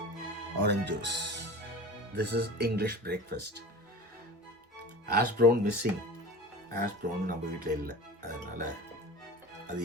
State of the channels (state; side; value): normal; both; correlation 0.35